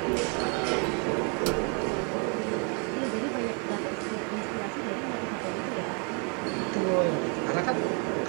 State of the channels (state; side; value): quieter; left; 36.9 dB